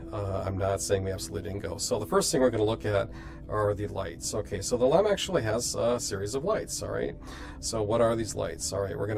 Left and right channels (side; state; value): both; identical; correlation 1.00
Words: I'm not saying we absolutely didn't go. So the first thing we're going to look at are the lights. Okay, so the LEM actually has a series of lights. All right, so what are these lights? All right, we're going